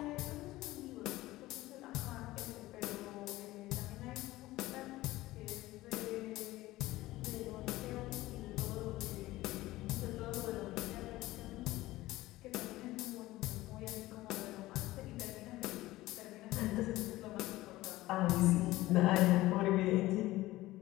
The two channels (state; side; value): quieter; right; 17.6 dB